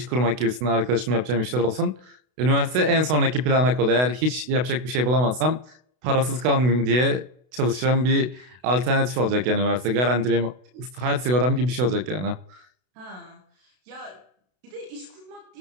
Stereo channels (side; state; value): left; late; 32 ms